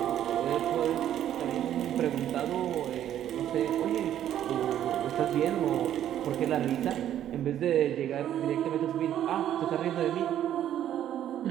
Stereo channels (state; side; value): quieter; left; 11.1 dB